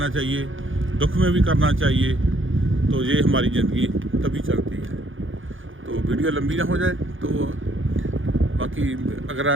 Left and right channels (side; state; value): left; late; 0.58 ms